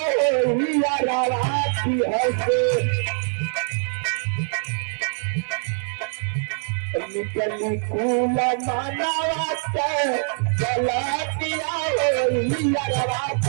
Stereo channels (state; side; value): silent; left; 61 dB below the other